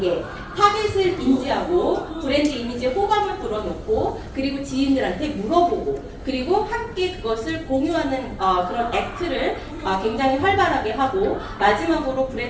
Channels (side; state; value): both; identical; correlation 1.00